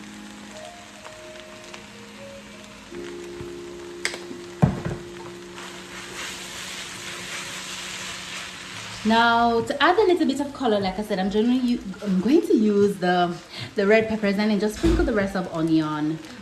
Now to add a little bit of color, like I said, I'm going to use the red peppers and then just sprinkle the rest of onion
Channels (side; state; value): both; identical; correlation 1.00